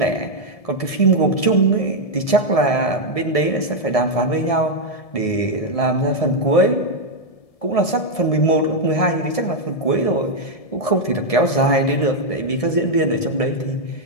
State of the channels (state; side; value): late; right; 1.7 ms